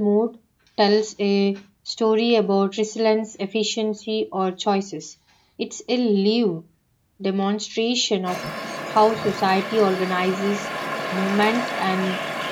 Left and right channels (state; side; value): identical; both; correlation 1.00